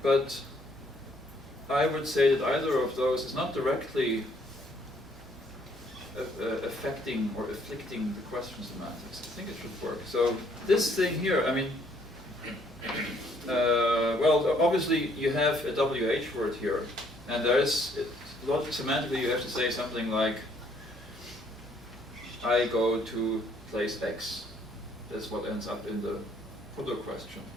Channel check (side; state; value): both; normal; correlation 0.66